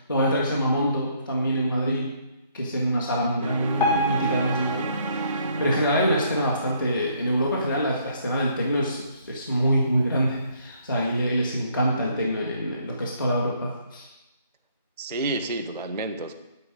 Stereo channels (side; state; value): both; inverted; correlation -0.66